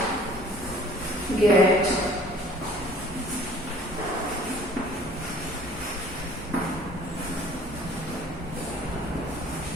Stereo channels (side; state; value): both; normal; correlation 0.52